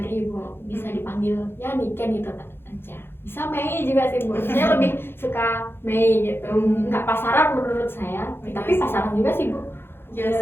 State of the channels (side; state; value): right; late; 0.11 ms